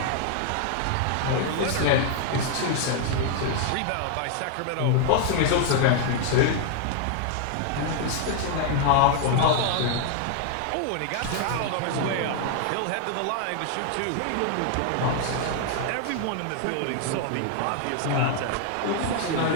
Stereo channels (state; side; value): different; both; correlation 0.00